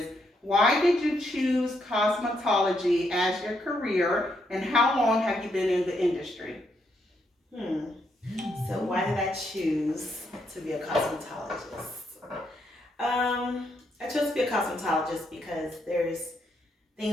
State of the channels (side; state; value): both; normal; correlation 0.77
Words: why did you choose cosmetology as your career, and how long have you been in the industry? So why did I choose to be a cosmetologist? I chose to be a cosmetologist because there's